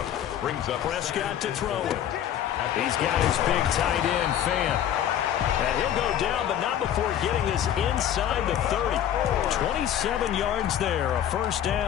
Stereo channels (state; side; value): quieter; right; 10.5 dB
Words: brings up Prescott to throw it. He's got his big tight end, Fant. And he'll go down, but not before getting this inside the 30. 27 yards there, a 1st